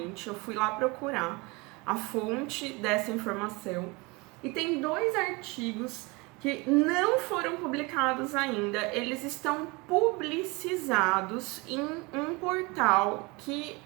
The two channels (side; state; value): left; quieter; 26.1 dB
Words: Eu fui lá procurar a fonte dessa informação. E tem 2 artigos que não foram publicados ainda, eles estão publicizados em um portal que